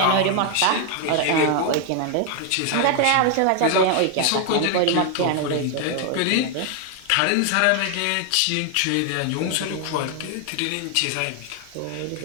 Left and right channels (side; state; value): both; different; correlation 0.00